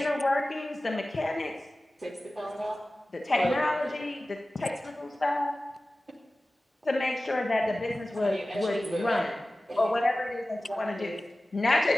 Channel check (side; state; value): both; normal; correlation 0.96